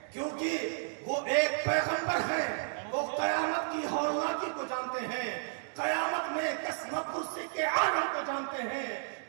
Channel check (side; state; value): left; silent; digital silence